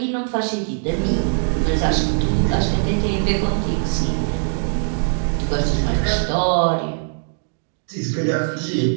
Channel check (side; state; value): left; silent; digital silence